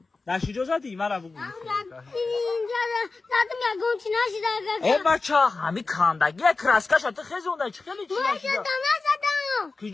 نشی جو زدی مرا بگو اینجا زدم یکم چی نشیده ای بچه همی کاندگی کراسکش تو خیزونده چی خیلی چی من نشیده جدا نزدم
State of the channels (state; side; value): quieter; right; 3.9 dB